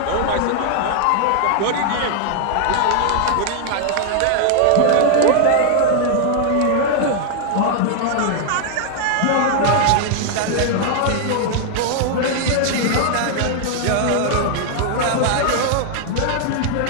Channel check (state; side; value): different; both; correlation 0.00